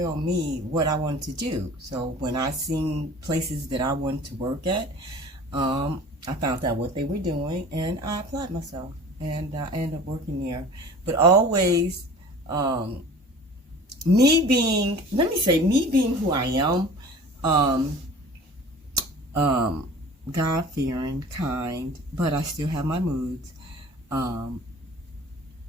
me what I wanted to do. So when I seen places that I wanted to work at, I found out what they were doing, and I applied myself, and I ended up working there. But always, me being who I am, God-fearing, kind, but I still have my moods.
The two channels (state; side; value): normal; both; correlation 0.43